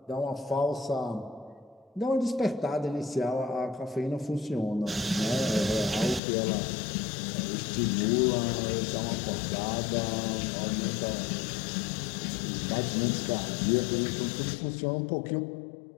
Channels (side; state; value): right; drops out; at 6.2 s